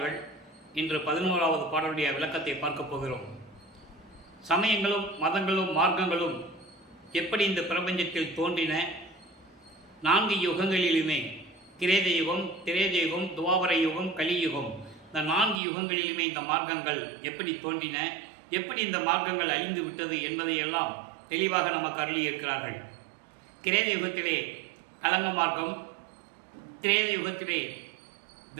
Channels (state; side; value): drops out; left; at 15.6 s